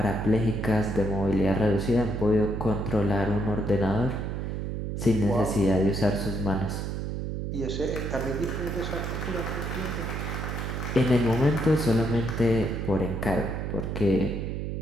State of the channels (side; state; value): right; noise; hum, 3 dB below the sound